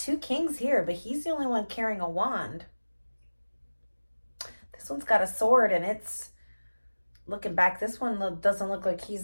kings here, but he's the only one carrying a wand. This one's got a sword, and it's looking back. This one doesn't look like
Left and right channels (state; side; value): inverted; both; correlation -1.00